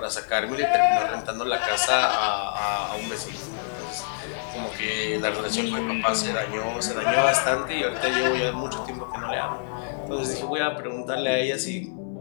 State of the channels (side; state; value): right; silent; 58 dB below the other